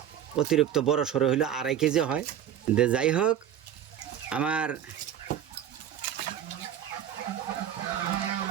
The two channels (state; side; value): quieter; left; 9.9 dB